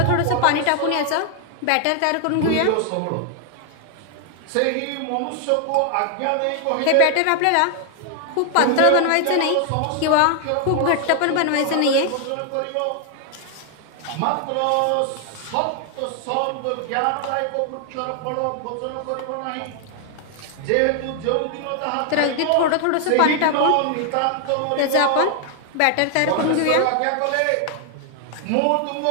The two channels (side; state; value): both; different; correlation 0.00